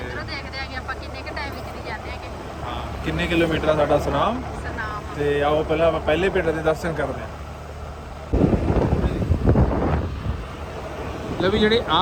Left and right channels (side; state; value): both; identical; correlation 1.00